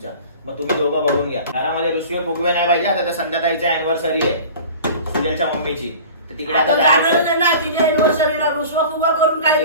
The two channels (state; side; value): inverted; both; correlation -0.41